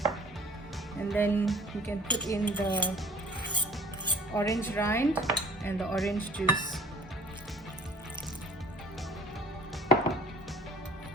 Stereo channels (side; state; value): both; normal; correlation 0.50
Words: And then you can put in the orange rind and the orange juice